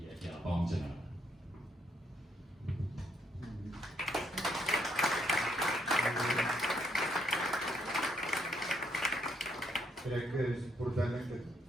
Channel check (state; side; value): normal; both; correlation 0.73